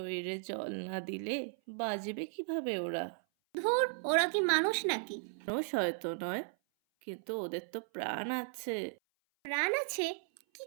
জল না দিলে বাঁচবে কিভাবে ওরা? ধুর, ওরা কি মানুষ নাকি? মানুষ হয়তো নয়, কিন্তু ওদের তো প্রাণ আছে। প্রাণ আছে? কি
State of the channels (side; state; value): left; silent; 54 dB below the other